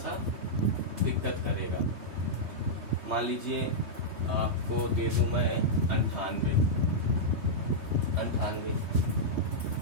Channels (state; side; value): late; left; 3.1 ms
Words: दिक्कत करेगा। मान लीजिए आपको दे दूं मैं 98 है।